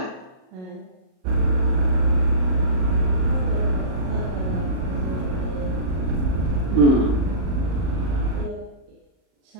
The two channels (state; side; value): late; left; 38 ms